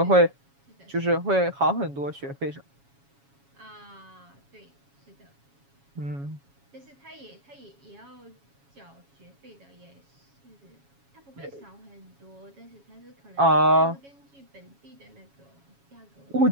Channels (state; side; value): late; left; 7.2 ms